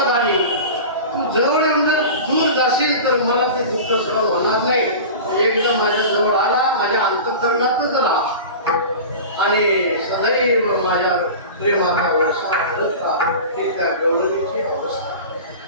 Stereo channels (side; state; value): both; inverted; correlation -0.33